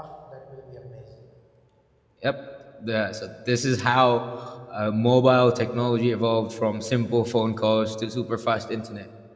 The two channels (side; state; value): both; identical; correlation 1.00